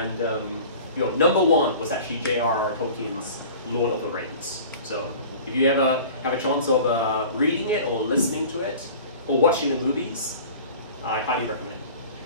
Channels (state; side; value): inverted; both; correlation -0.42